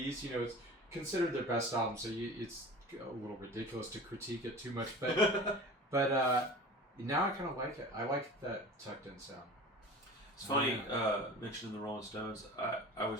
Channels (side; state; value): both; normal; correlation 0.37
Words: It's considered their best album, so it's a little ridiculous to critique it too much. But now I kind of like it. I like that tucked in sound. It's funny, mentioning the Rolling Stones, I